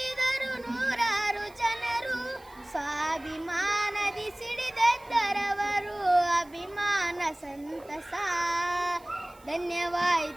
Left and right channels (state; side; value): noise; right; hiss, 27 dB below the sound